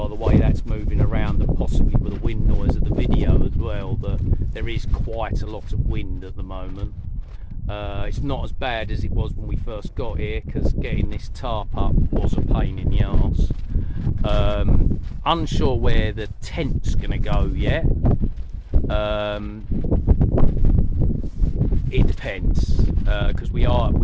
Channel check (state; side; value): identical; both; correlation 1.00